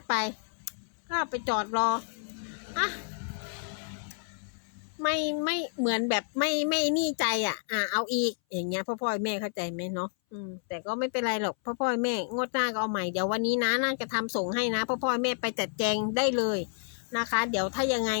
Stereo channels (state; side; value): silent; right; 58 dB below the other